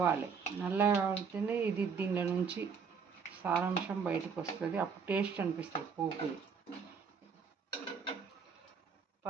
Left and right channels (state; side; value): quieter; left; 5.9 dB